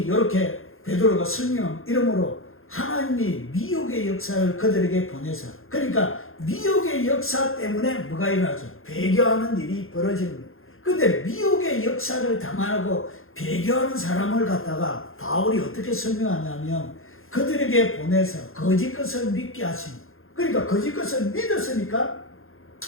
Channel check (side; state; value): right; late; 0.60 ms